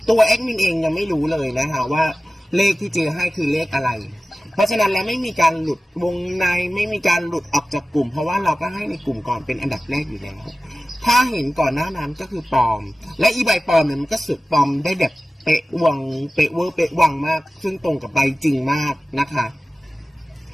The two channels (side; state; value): both; normal; correlation 0.96